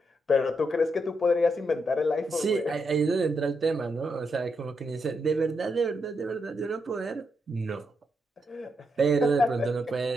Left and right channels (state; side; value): normal; both; correlation 0.81